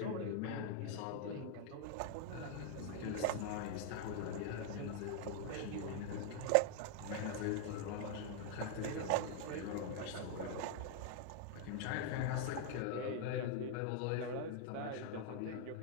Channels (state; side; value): different; both; correlation 0.00